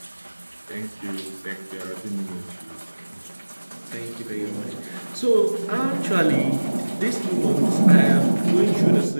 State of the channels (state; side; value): inverted; both; correlation -1.00